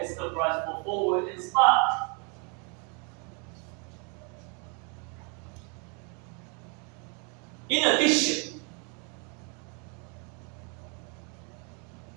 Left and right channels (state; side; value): quieter; left; 35.9 dB